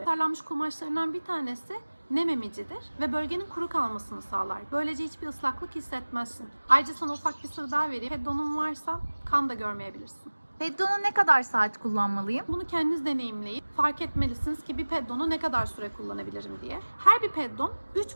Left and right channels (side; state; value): both; inverted; correlation -1.00